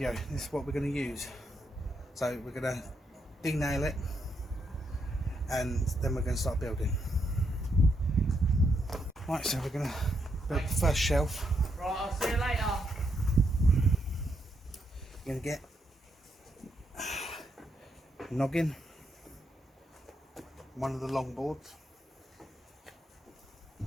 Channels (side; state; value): both; normal; correlation 0.79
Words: this is what we're going to use. So we're going to de-nail it and then we're going to start building. Right, so we're going to build the first shelf. Right, I'll see you later. We're going to get noggin, one of the long boards,